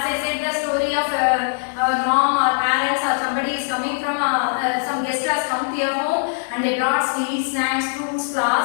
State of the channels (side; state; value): right; silent; 65 dB below the other